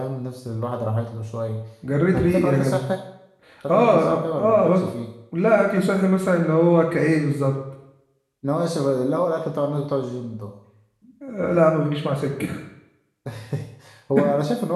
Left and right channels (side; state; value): both; identical; correlation 1.00